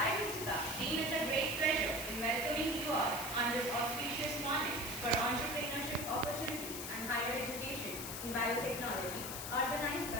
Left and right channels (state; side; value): noise; left; hiss, 6 dB below the sound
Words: Ritika, deem it a great pleasure in welcoming you all on this auspicious morning for entrepreneurship opportunities and higher education in biotechnology, organized